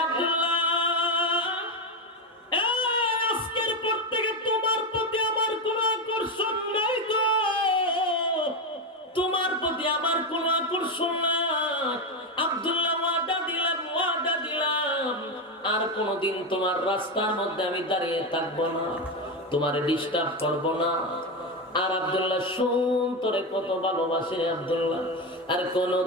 আব্দুল্লাহ, আজকের পর থেকে তোমার প্রতি আমার কোনো আকর্ষণ নাই তো, তোমার প্রতি আমার কোনো আকর্ষণ নাই। আব্দুল্লাহ ওয়াদা দিলাম আর কোনদিন তোমার রাস্তার মধ্যে আমি দাঁড়িয়ে থাকবো না, তোমারে ডিস্টার্ব করব না। আর আব্দুল্লাহ শুন, তোরে কত ভালোবাসে আব্দুল্লাহ, আর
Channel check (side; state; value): both; normal; correlation 0.13